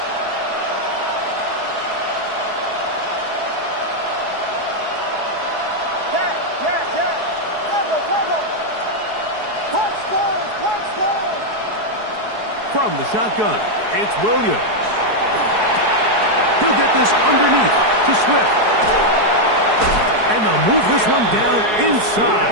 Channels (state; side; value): late; left; 4.7 ms